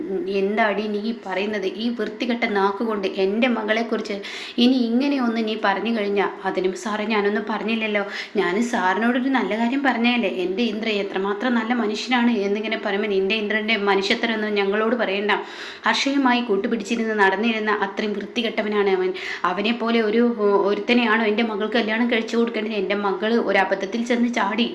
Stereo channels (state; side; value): identical; both; correlation 1.00